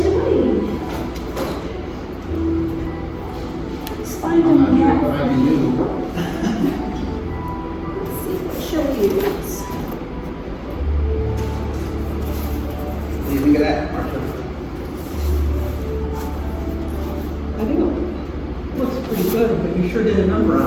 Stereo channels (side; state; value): both; identical; correlation 1.00